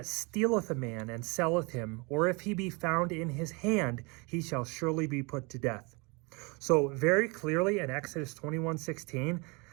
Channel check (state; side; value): quieter; left; 29.0 dB